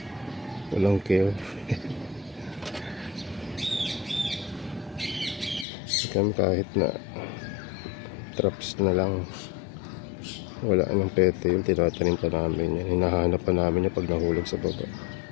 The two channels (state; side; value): drops out; right; at 5.7 s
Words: Walang care. Kami kahit na traps na lang, wala nang pete yung tinatanim pa namin yan. Hinahanap pa namin yung pag nahulog sa baba.